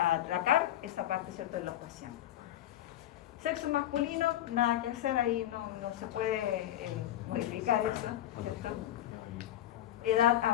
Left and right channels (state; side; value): quieter; right; 12.6 dB